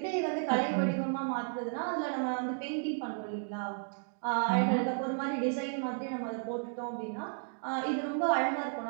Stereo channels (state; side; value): silent; left; 56 dB below the other